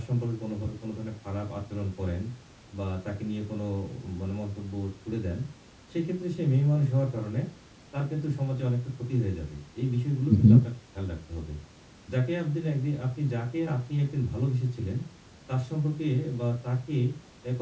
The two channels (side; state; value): both; identical; correlation 1.00